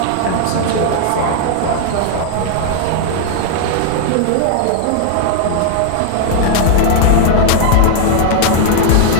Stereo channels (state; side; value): different; both; correlation -0.01